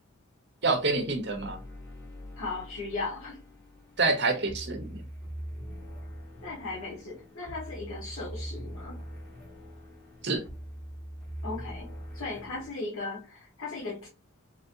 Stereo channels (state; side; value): normal; both; correlation 0.02